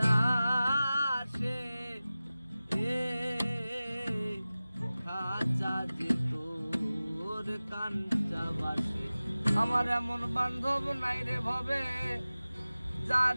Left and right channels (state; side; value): inverted; both; correlation -0.97